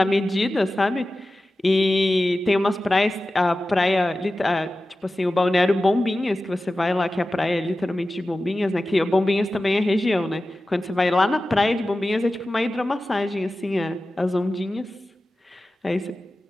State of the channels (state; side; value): normal; both; correlation 0.95